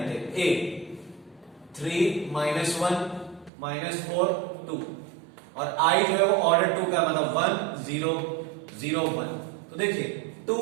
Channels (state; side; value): drops out; left; at 3.5 s